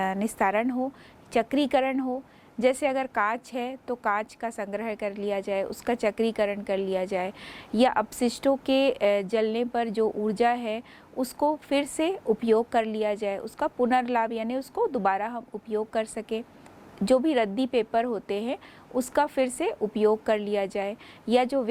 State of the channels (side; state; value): both; identical; correlation 1.00